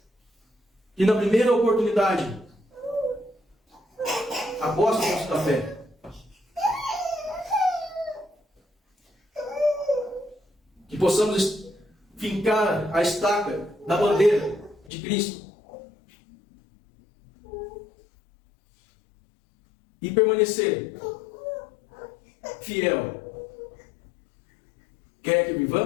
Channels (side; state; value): right; drops out; at 14.9 s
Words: que na primeira oportunidade apostam da fé. Que possamos fincar a estaca da bandeira de Cristo e permanecer fiel, quer que